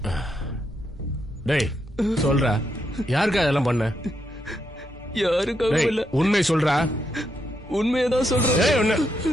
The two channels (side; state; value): both; normal; correlation 0.80